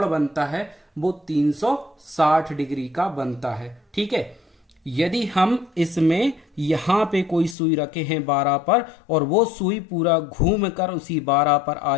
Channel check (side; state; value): right; drops out; at 7.6 s